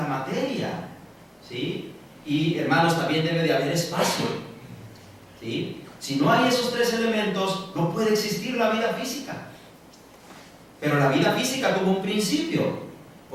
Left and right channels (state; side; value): identical; both; correlation 1.00